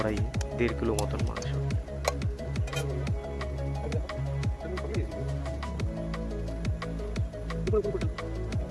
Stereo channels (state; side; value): identical; both; correlation 1.00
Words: 1.5 কিলো মতন মাংস।